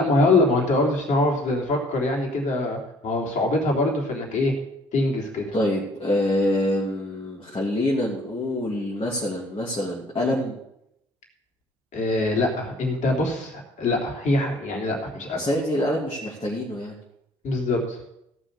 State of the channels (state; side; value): normal; both; correlation 0.57